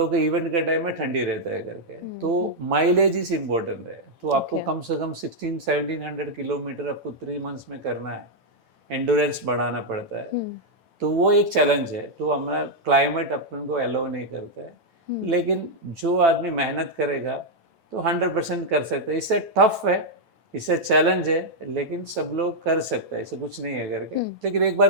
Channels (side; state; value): left; late; 9.0 ms